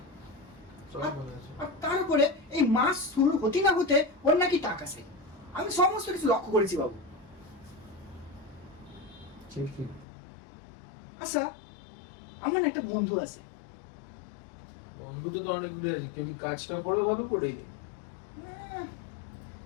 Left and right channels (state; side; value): drops out; right; at 10.1 s